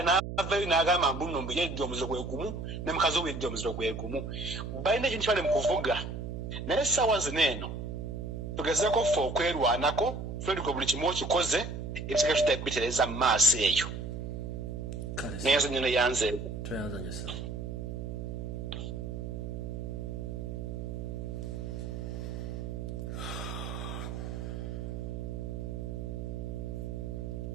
n'avayo n'agamba mbundi nombu yeddi omuziro gwe gumu ne mukazi we yeddi omuziro gwe gumu. Balina ekintu kyabali mu kuvuga. Naye essaawa zino eno tugezeeko ffe okwerwanako tweliko buli kimu okikoze ebisika tutabitereza mu maaso eyo. Naye nyo neyanze tweyanzanye sawa.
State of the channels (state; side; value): noise; right; hum, 5 dB below the sound